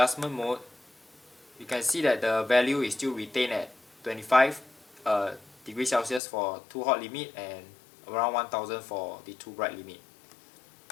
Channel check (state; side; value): drops out; right; at 6.2 s